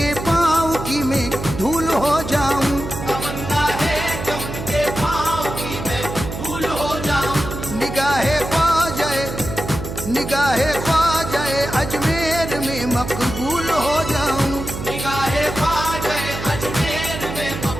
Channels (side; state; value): right; noise; hum, 7 dB below the sound